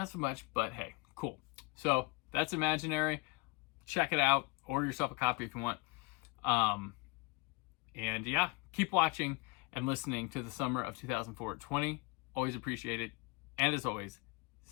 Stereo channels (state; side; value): quieter; right; 25.1 dB